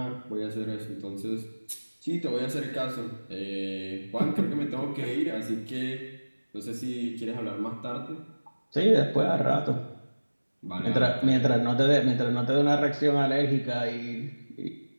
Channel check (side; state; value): both; inverted; correlation -1.00